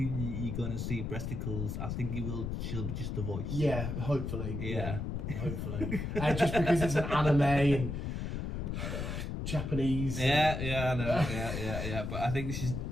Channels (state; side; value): noise; left; rumble, 3 dB below the sound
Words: gonna see breasticles. I think she'll be just the voice. Yeah, hopefully. Yeah. Hopefully. Just because it's an anime and Japanese. Yeah, I know. Yeah. But I think